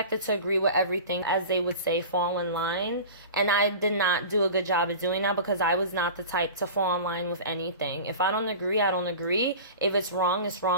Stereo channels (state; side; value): inverted; both; correlation -0.35